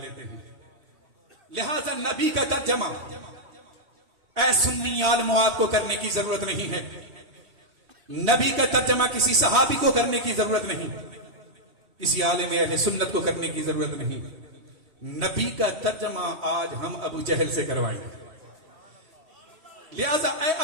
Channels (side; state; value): left; late; 3.1 ms